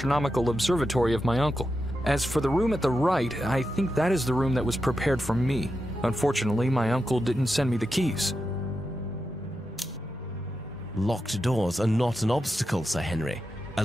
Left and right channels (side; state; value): both; normal; correlation 0.89